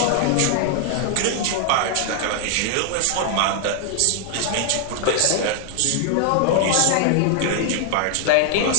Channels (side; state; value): both; different; correlation 0.00